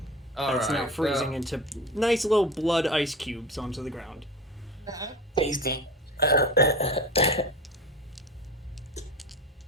It's now Alright, freezing into nice little blood ice cubes onto the ground. Tasty.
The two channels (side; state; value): both; normal; correlation 0.31